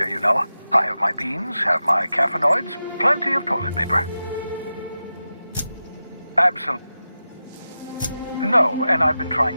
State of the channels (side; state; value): both; inverted; correlation -0.92